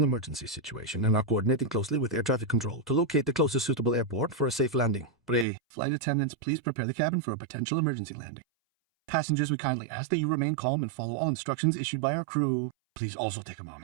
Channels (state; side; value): drops out; left; at 5.5 s